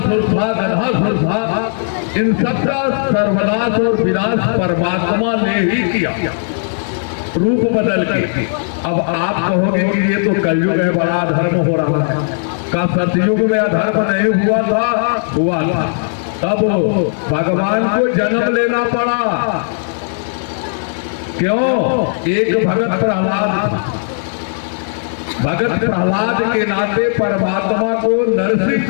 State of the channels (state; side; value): silent; right; digital silence